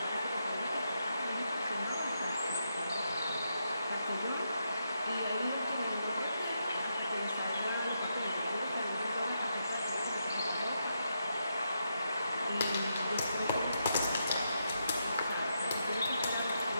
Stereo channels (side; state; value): both; inverted; correlation -0.82